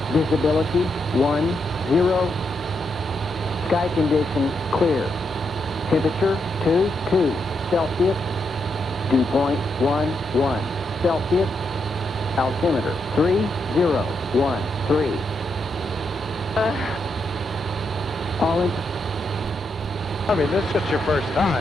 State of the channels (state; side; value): normal; both; correlation 0.81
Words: Visibility 10. Sky conditions clear. Temperature 22 Celsius. Dew point 11 Celsius. Altimeter 3013. Arlington. I mean, this is just your first